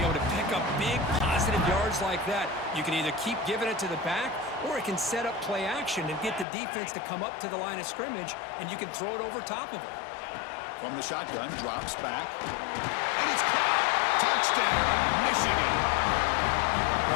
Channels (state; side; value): drops out; right; at 6.5 s